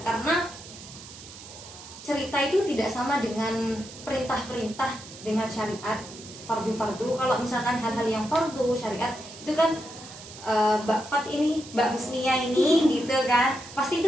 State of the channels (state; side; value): noise; right; hiss, 16 dB below the sound